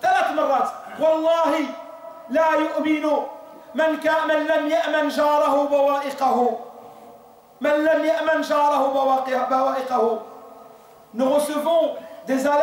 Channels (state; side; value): identical; both; correlation 1.00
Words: 3 مرات، والله لا يؤمن من لم يأمن جاره بوائقه، من لم يأمن جاره بوائقه. Nous recevons des